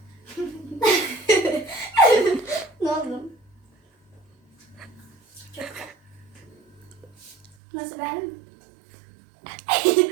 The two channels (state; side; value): drops out; left; at 7.6 s